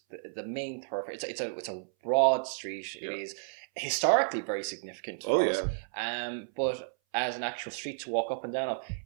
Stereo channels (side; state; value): left; silent; 57 dB below the other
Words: the main thoroughfare. It's a broad street. Yeah. It is historically very significant for us. But as an actual street to walk up and down of,